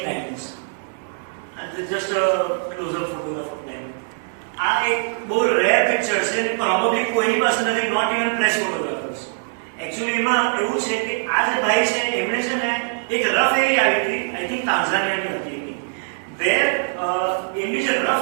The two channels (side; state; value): left; silent; 60 dB below the other